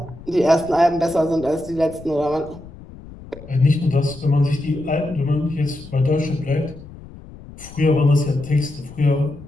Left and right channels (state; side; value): noise; left; rumble, 17 dB below the sound